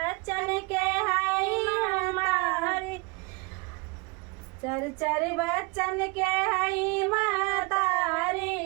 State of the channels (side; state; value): left; quieter; 28.9 dB